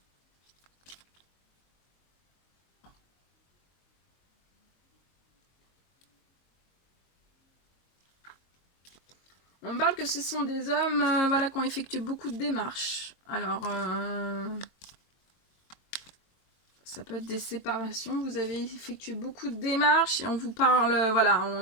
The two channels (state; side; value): late; right; 22 ms